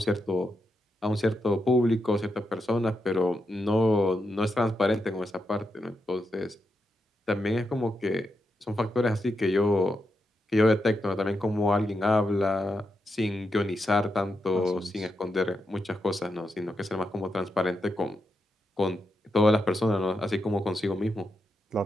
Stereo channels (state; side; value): normal; both; correlation 0.85